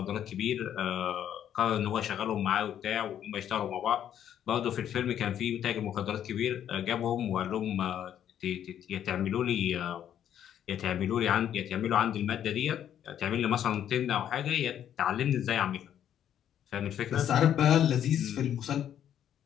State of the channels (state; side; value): quieter; right; 10.1 dB